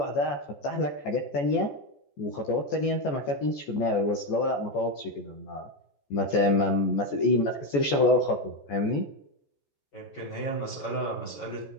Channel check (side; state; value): right; late; 14 ms